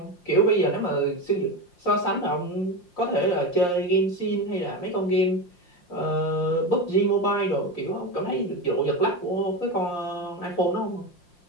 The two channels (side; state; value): right; late; 5.7 ms